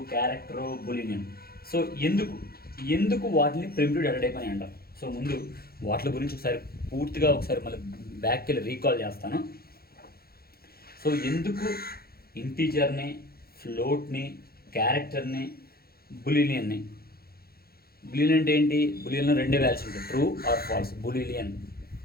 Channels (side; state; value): right; late; 0.44 ms